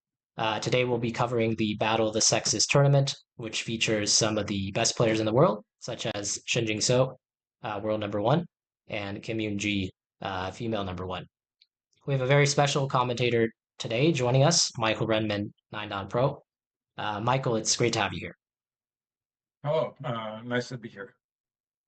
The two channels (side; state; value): both; identical; correlation 1.00